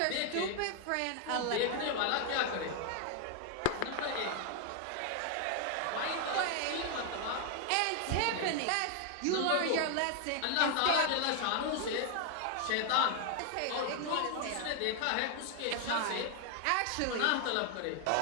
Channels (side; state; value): both; different; correlation 0.00